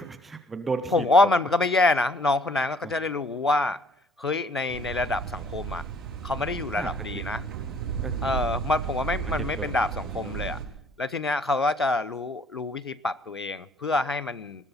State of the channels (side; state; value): both; normal; correlation 0.59